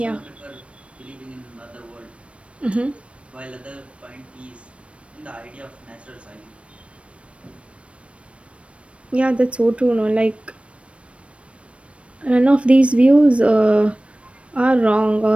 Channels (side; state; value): left; late; 0.061 ms